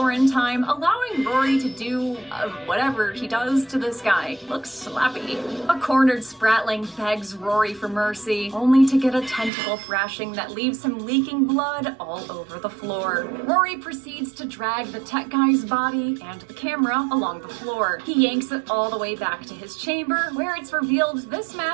in time, allowing Rory to do whatever he does to this guy. Looks slappy. A cornered Spratling begs Rory for mercy, only to get a tentacle thrashing that leaves him leaking blood all over the floor. Rory proceeds to drag the tech guy's body and the camera along the floor. He yanks it all the way back to his chamber, where it's revealed this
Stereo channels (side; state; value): left; drops out; at 9.5 s